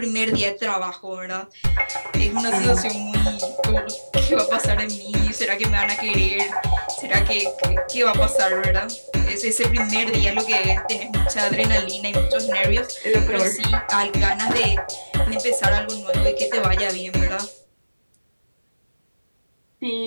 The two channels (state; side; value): inverted; both; correlation -1.00